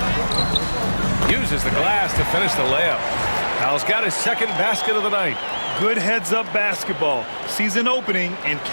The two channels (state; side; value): inverted; both; correlation -1.00